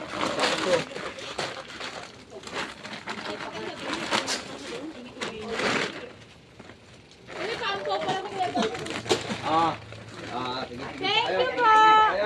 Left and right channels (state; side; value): identical; both; correlation 1.00